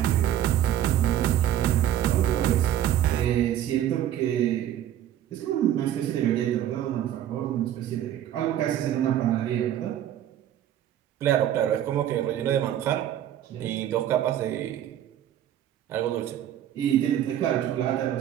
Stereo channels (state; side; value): quieter; left; 11.4 dB